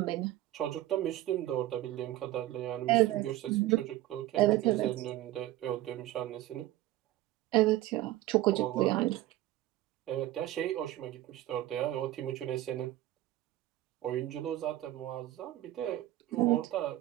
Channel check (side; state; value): left; quieter; 15.2 dB